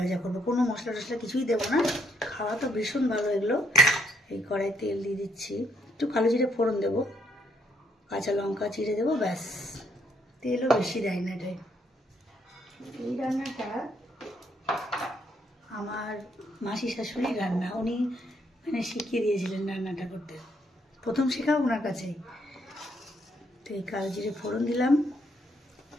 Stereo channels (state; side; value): normal; both; correlation 0.72